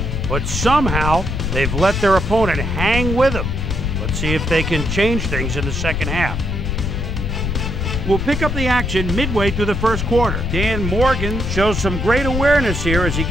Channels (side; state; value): left; noise; rumble, 2 dB below the sound